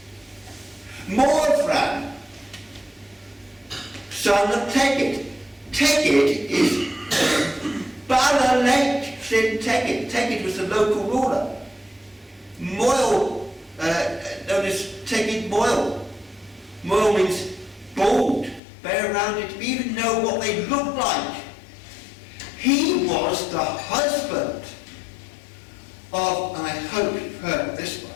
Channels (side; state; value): right; drops out; at 18.6 s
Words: Morvran, son of Tegid. Tegid is Bala Lake in Tegid. Tegid was the local ruler. Moyle, known as Tegid Moyle. Moyle means bald, bare-rounded. We even know what they look like. He was the husband of, and I hope you've heard of this